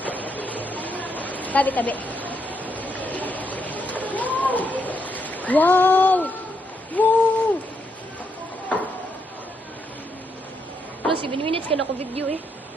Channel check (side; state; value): both; normal; correlation 0.78